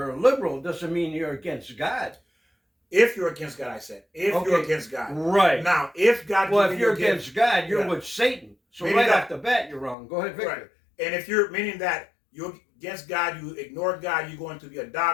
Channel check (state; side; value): drops out; right; at 10.0 s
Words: liberal doesn't mean you're against God. If you're against God, I said, if you're Okay, against God. right. Now, if God Well, gives if you you're a gift, against God, you're yeah. with Satan. So Meaning right that- off the bat, you're wrong. Go ahead, Victor. Right. And if you're meaning that you're against God, you ignore God, you're going to be a